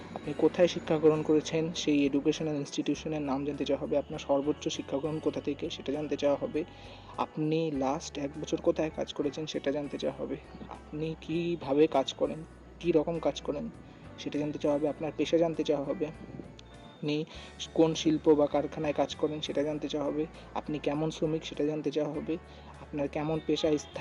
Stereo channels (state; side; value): identical; both; correlation 1.00